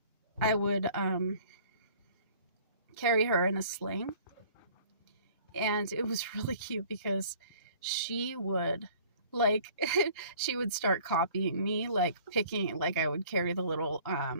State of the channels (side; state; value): both; inverted; correlation -0.52